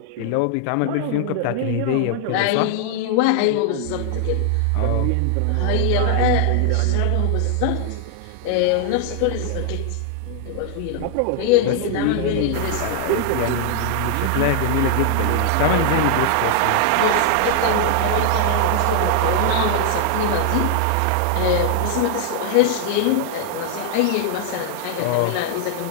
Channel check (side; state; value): both; different; correlation 0.00